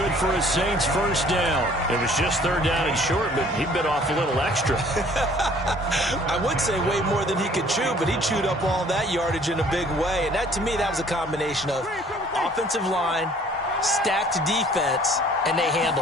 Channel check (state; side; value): normal; both; correlation 0.55